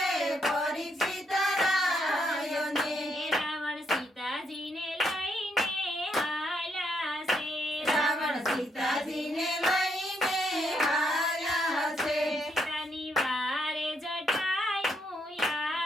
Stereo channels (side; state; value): both; normal; correlation 0.76